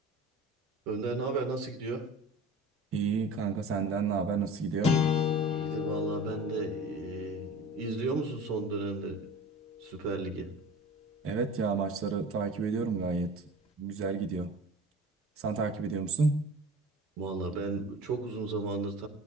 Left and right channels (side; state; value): both; normal; correlation 0.38